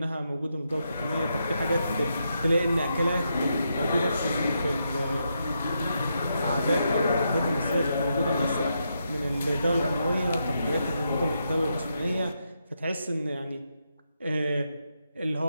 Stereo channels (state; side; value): inverted; both; correlation -0.82